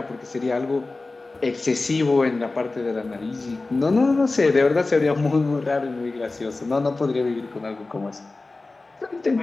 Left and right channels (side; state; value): right; quieter; 3.4 dB